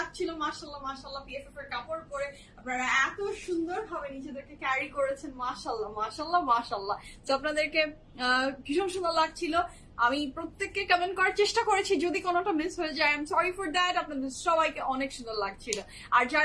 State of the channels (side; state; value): both; identical; correlation 1.00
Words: মাশাআল্লাহ মাশাআল্লাহ। বিএফএফ এর কাপড় পরে আপনারা এত সুন্দর ভাবে নিজেদেরকে ক্যারি করেছেন, মাশাআল্লাহ মাশাআল্লাহ মাশাআল্লাহ। তো আপনাদেরকে ভীষণ সুন্দর লাগছিল। আমি প্রত্যেককে কমেন্ট করার চেষ্টা করেছি, যদি কোনোটা মিস হয়ে যায় I am sorry for that. আপনাদের সবাইকে অনেক সুন্দর লাগছিল। আর